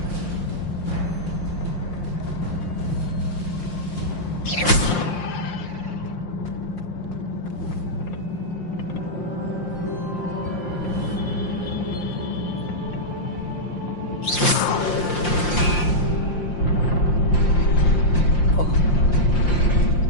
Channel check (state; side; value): late; right; 5.7 ms